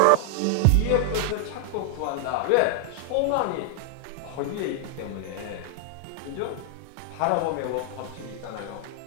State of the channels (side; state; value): both; different; correlation 0.00